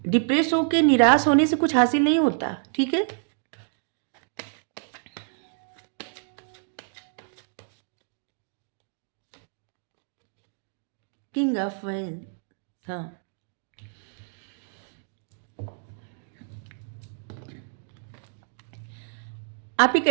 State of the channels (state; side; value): silent; left; digital silence